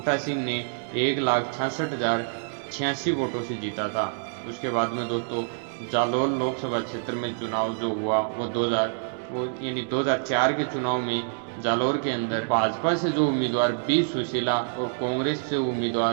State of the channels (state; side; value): silent; left; digital silence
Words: सिंह ने 1,66,086 वोटों से जीता था। उसके बाद में दोस्तों, जालौर लोकसभा क्षेत्र में चुनाव जो हुआ वो 2004 के चुनाव में जालौर के अंदर भाजपा से जो उम्मीदवार बी सुशीला और कांग्रेस से